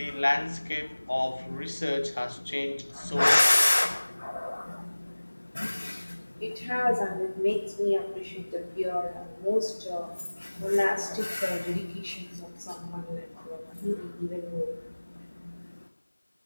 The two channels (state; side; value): inverted; both; correlation -1.00